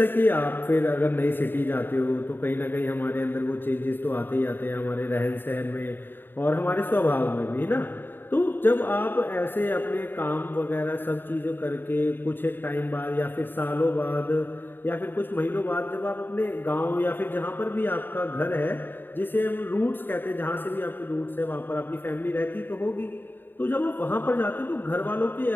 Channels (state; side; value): late; right; 0.095 ms